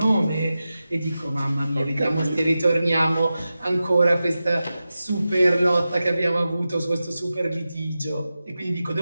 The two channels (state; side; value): inverted; both; correlation -0.93